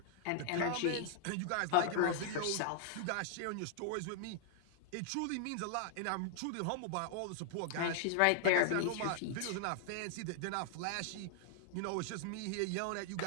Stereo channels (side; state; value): both; different; correlation 0.00